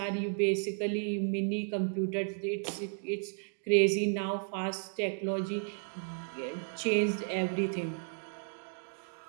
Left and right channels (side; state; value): left; silent; 55 dB below the other